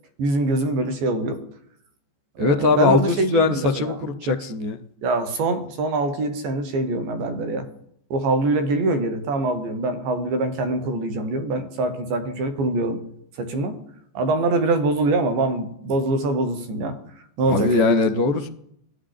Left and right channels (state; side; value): late; left; 14 ms